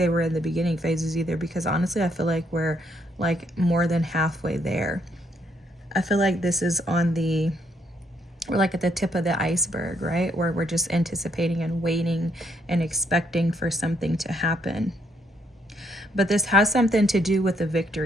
we're in the beginning phases either, because honestly, I feel like we're like more than halfway there. I feel like this is we're like at the tip of the iceberg, right? Where we're just anticipating and waiting and expecting for something to happen. But this has something to do with the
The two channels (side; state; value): both; normal; correlation 0.72